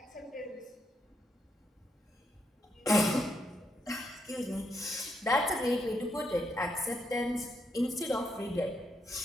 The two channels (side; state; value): both; normal; correlation 0.79